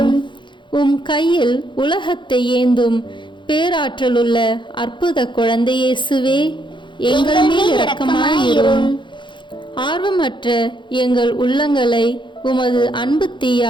உம் கையில் உலகத்தை ஏந்தும் பேராற்றலுள்ள அற்புத குழந்தை இயேசுவே, எங்கள் மேல் இரக்கமாயிரும். ஆர்வமற்ற எங்கள் உள்ளங்களை உமது அன்பு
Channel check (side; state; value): right; late; 0.23 ms